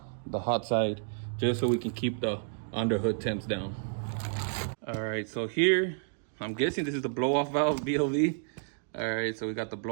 the hot side just so we can keep the underhood temps down. All right, so here, I'm guessing this is the blow off valve BLV. All right, so we got the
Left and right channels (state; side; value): silent; left; digital silence